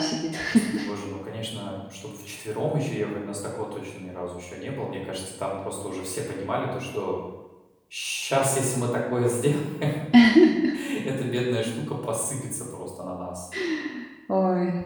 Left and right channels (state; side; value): identical; both; correlation 1.00